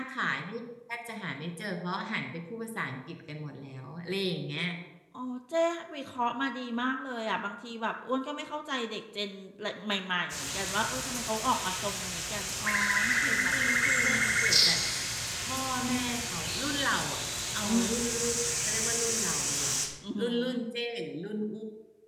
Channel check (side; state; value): both; identical; correlation 1.00